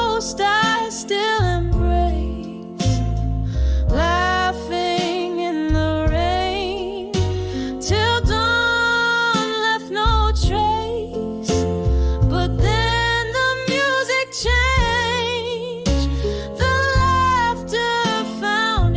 I still embrace, laughing in the rain till dawn left no trace. But then the music changed, the laughter found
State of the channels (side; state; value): both; identical; correlation 1.00